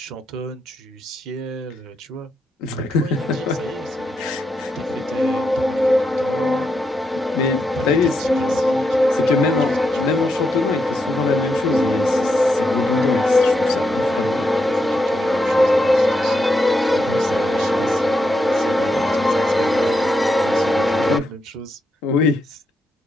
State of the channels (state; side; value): normal; both; correlation 0.82